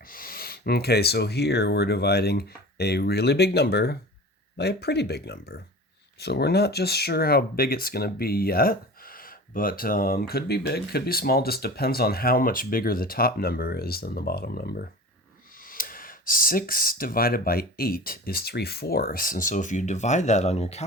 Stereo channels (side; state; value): both; normal; correlation 0.36